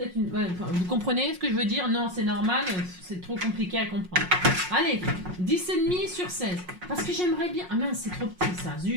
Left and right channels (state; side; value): late; left; 5.5 ms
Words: une... Ouais, enfin, vous comprenez ce que je veux dire? Non, c'est normal, c'est trop compliqué à comprendre. Allez, 10,5 sur 16. Parce que j'aimerais bien... Ah mince, c'est trop petit ça,